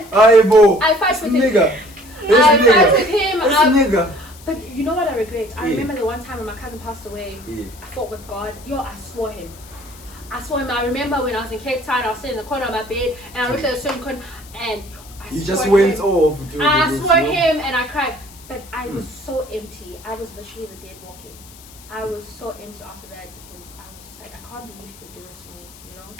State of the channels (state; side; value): noise; left; hiss, 21 dB below the sound